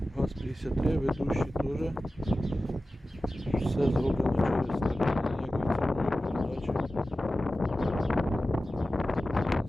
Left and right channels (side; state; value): both; normal; correlation 0.95